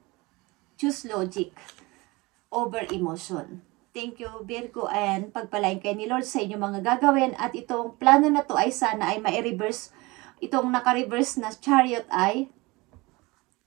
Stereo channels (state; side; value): quieter; left; 23.5 dB